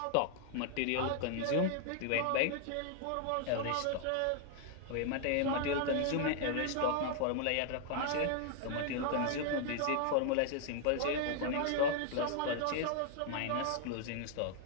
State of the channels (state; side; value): different; both; correlation 0.00